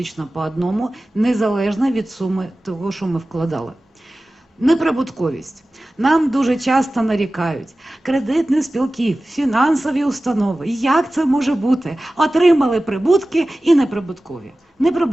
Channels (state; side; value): normal; both; correlation 0.96